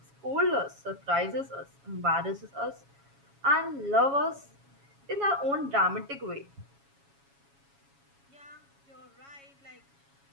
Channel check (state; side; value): late; left; 7.2 ms